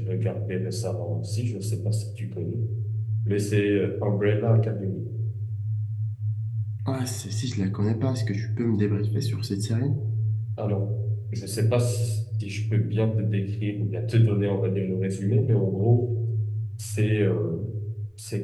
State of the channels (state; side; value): identical; both; correlation 1.00